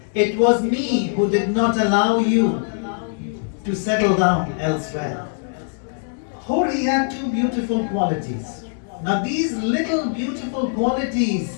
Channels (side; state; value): right; silent; digital silence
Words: It was me who did not allow you to settle down elsewhere. Hur, he had two beautiful qualities. Now these little beautiful